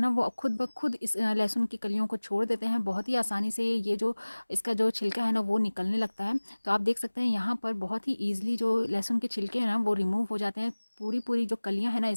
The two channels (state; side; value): inverted; both; correlation -1.00